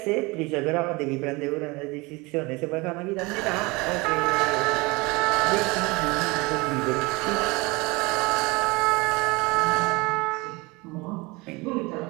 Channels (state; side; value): quieter; left; 24.8 dB